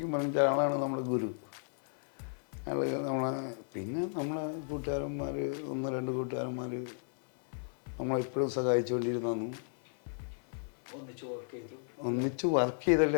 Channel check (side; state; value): right; silent; digital silence